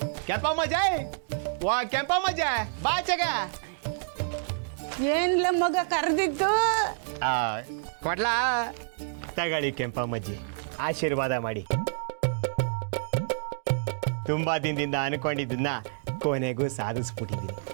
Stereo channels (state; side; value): silent; left; digital silence